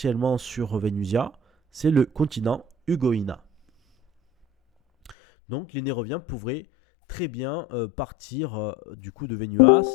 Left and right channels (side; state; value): right; drops out; at 5.2 s